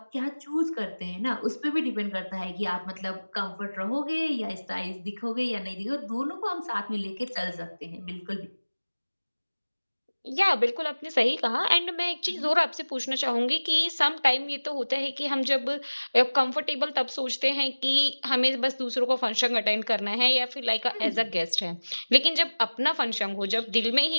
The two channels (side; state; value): both; inverted; correlation -1.00